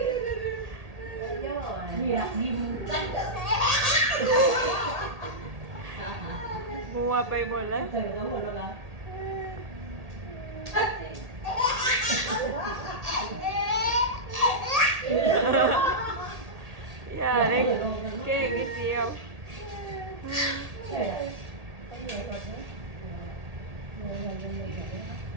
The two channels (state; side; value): late; left; 1.8 ms